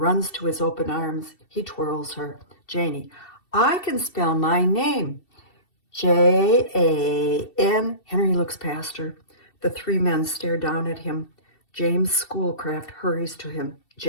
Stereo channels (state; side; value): late; right; 2.7 ms